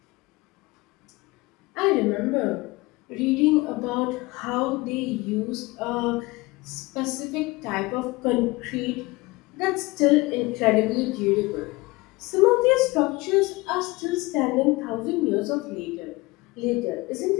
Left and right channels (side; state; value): right; quieter; 22.6 dB